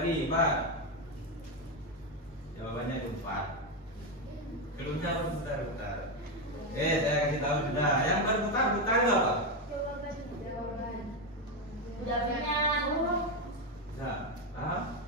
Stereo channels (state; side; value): normal; both; correlation 0.09